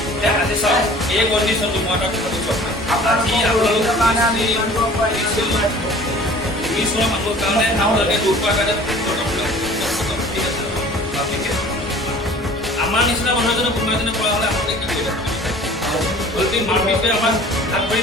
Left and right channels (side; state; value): both; normal; correlation 0.47